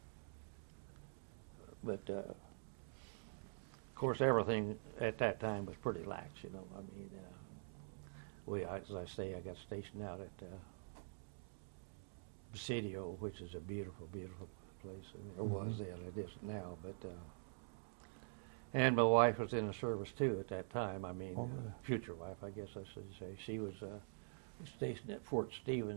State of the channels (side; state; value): left; silent; digital silence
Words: But of course, everything at that time was pretty lax. You know, I mean, as I say, I got stationed out at Presidio, which is a beautiful, beautiful place. I mean, it was then, it isn't now. But And my wife was in the service too at that time. I mean, Oh. future wife, I guess I should say. She was stationed at Fort